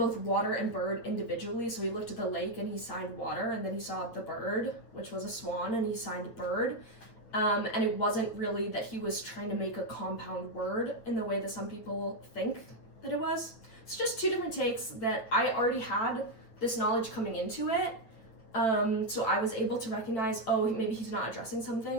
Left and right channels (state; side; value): late; right; 9.2 ms